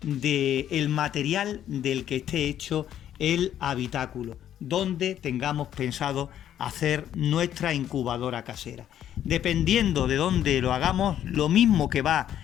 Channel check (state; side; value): quieter; right; 10.8 dB